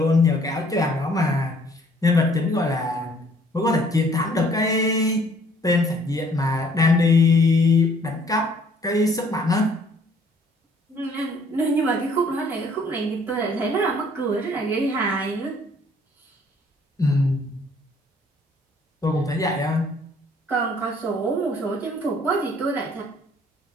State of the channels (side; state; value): both; normal; correlation 0.60